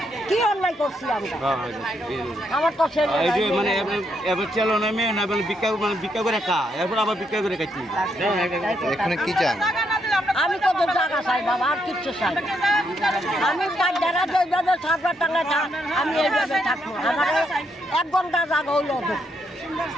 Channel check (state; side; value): normal; both; correlation 0.77